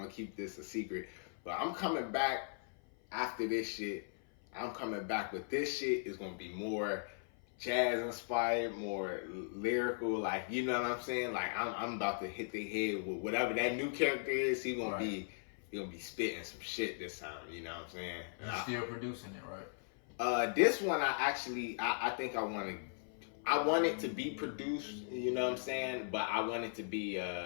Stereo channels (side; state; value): right; silent; 52 dB below the other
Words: keep this a secret. But I'm coming back after this shit. I'm coming back with this shit. It's gonna be more jazz inspired, more lyrical, like, you know what I'm saying? Like, I'm about to hit the head with whatever that new character is. He gonna be spitting some shit this time, you know what I'm saying? You're still producing it, right? This one I think I want it to be produced, you know what I'm saying? But I want it to be